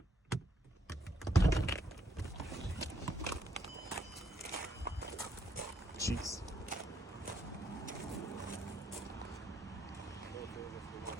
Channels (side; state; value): both; normal; correlation 0.73